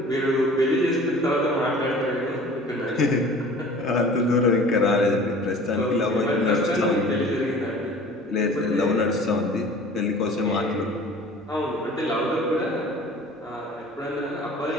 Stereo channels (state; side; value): normal; both; correlation 0.45